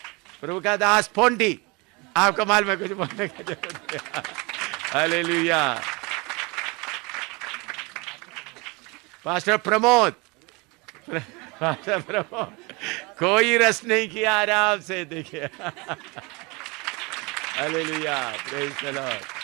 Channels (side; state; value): left; quieter; 27.3 dB